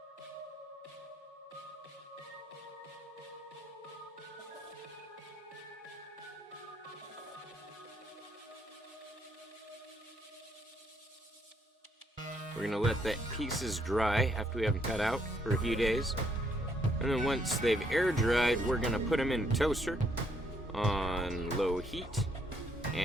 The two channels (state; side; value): normal; both; correlation 0.71